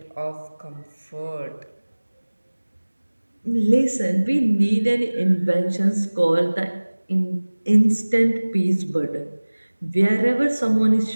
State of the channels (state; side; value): inverted; both; correlation -1.00